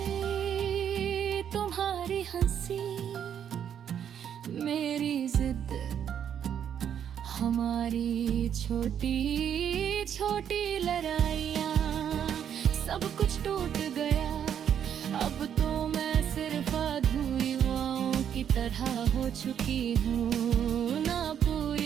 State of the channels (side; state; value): left; quieter; 8.9 dB